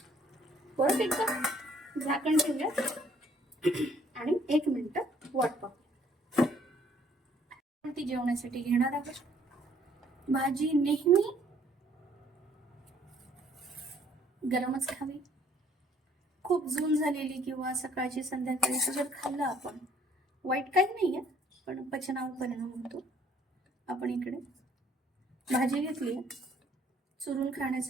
परत एकदा झाकण ठेवूया आणि 1 मिनिट वाट पाहू. ती जेवणासाठी घेणार आहोत. भाजी नेहमी गरमच खावी. खूप जून झालेली किंवा सकाळची संध्याकाळी जर खाल्लं आपण, वाईट काही नाहीये, पण पचनावर परिणाम होतो. आपण इकडे भाजी घेतली, चुरून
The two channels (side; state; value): both; normal; correlation 0.62